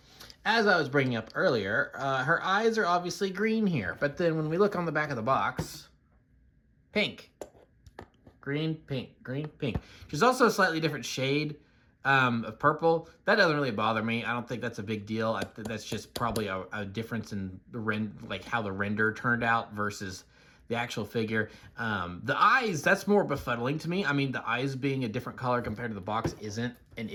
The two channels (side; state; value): both; identical; correlation 1.00